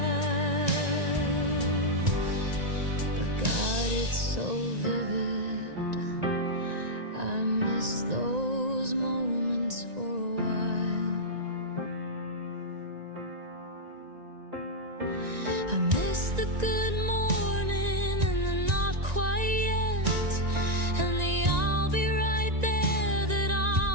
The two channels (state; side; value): late; left; 1.9 ms